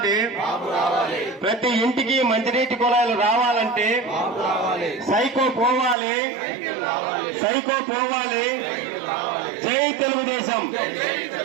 ప్రతి ఇంటికి మంచినీటి కుళాయిలు రావాలంటే, సైకో పోవాలి. జై తెలుగుదేశం,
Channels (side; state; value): left; drops out; at 6.0 s